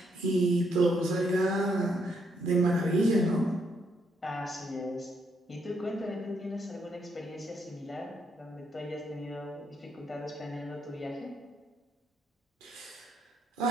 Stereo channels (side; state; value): both; normal; correlation 0.75